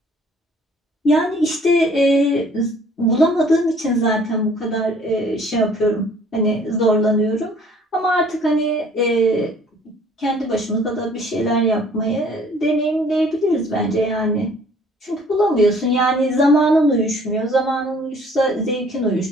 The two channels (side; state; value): both; normal; correlation 0.56